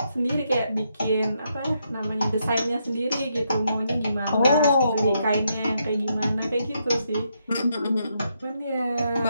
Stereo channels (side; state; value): both; inverted; correlation -0.78